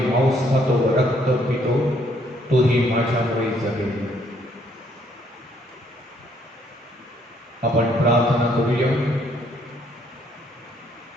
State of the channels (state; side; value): normal; both; correlation 0.68